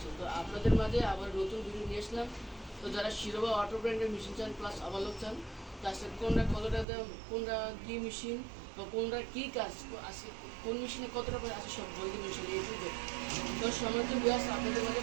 তো আপনাদের মাঝে আবার নতুন ভিডিও নিয়ে আসলাম। তো যারা শিরোবা অটো ব্র্যান্ডের মেশিন চান প্লাস আবালক চান, তার সাথে কোনটা কতটা দাম, কোনটা কী মেশিন বা কোনটা কী কাজ আছে, কোন মেশিনে কতটা করে আছে সব বলতে মেশিন এই যুগে। তো সম্মানিত ভাইয়া আপনাদের মাঝে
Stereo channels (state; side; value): drops out; left; at 6.9 s